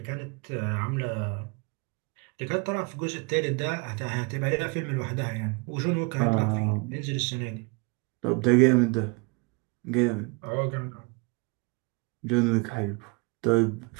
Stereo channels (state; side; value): quieter; left; 30.3 dB